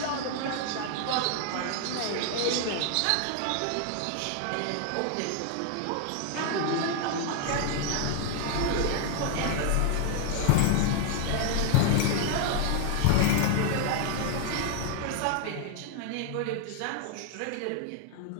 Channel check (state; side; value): different; both; correlation 0.00